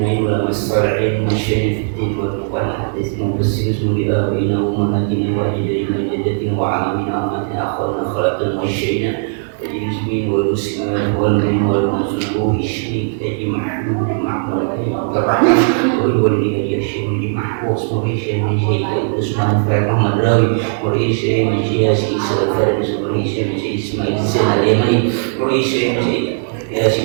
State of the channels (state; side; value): silent; left; 65 dB below the other